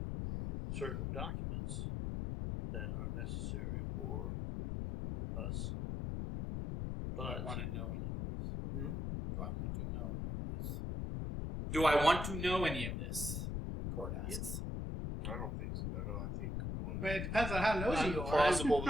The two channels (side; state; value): left; noise; rumble, 3 dB below the sound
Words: certain documents that are necessary for us. Do I But want to know any of this? Hmm? Do I want to know any of this? Do I want to know any of this? Cord asks. I don't think so. I think we want I mean, it depends on how nosy you are. plausible